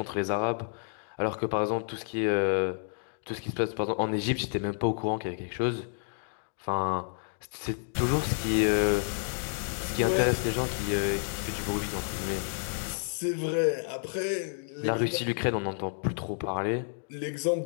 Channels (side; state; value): right; silent; digital silence